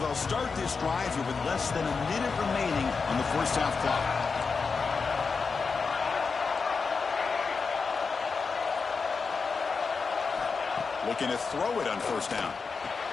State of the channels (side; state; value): right; quieter; 4.9 dB